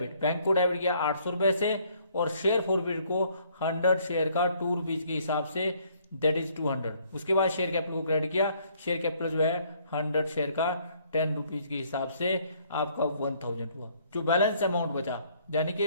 Bank को डेबिट किया ₹800 से, और शेयर फॉरफिट को 100 शेयर का ₹2 के हिसाब से, दैट इज 200। उसके बाद शेयर कैपिटल को क्रेडिट किया, शेयर कैपिटल जो है 100 शेयर का ₹10 के हिसाब से आपका 1000 हुआ। जो बैलेंस अमाउंट बचा, यानी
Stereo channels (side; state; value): both; inverted; correlation -0.64